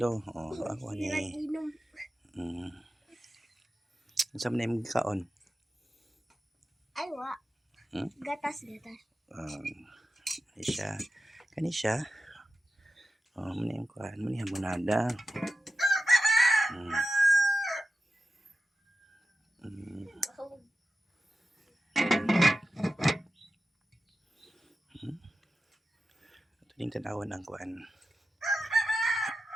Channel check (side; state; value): both; normal; correlation 0.93